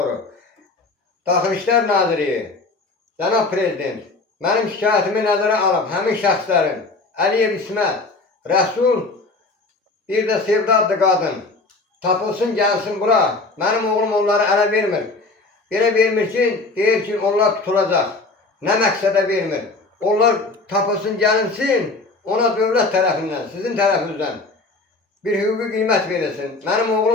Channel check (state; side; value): quieter; right; 3.5 dB